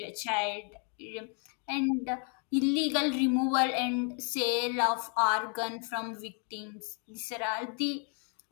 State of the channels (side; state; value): right; quieter; 39.8 dB